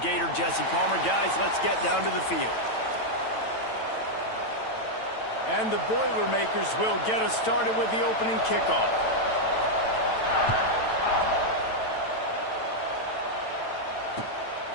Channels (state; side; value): late; right; 9.0 ms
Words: Jesse Palmer. Guys, let's get down to the field. And the Boilermakers will get us started with the opening kickoff.